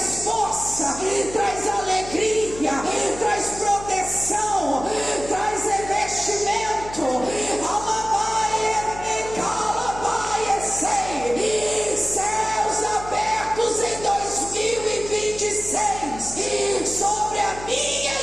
força, traz alegria, traz proteção, traz revestimento. Céus abertos em 2026 sobre a minha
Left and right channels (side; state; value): left; noise; hum, 14 dB below the sound